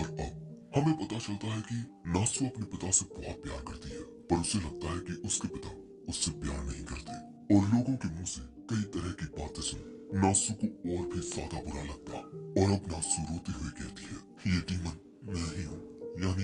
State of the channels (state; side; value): identical; both; correlation 1.00